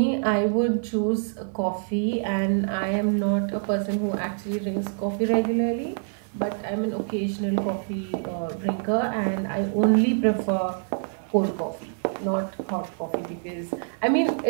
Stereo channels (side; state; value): left; silent; digital silence